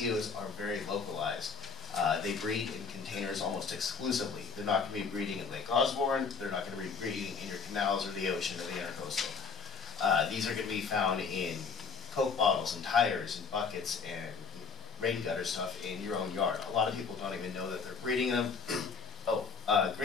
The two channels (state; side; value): quieter; right; 5.1 dB